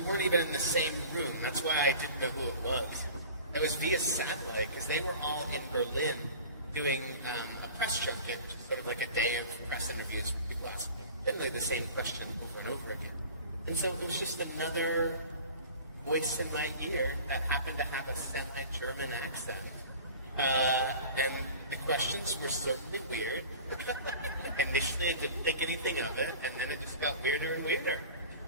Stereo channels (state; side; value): inverted; both; correlation -0.40